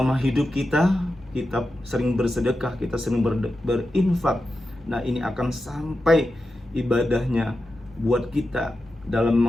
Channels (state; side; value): normal; both; correlation 0.90